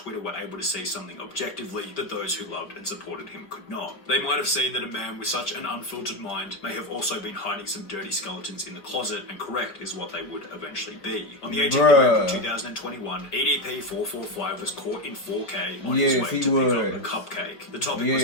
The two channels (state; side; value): late; right; 4.6 ms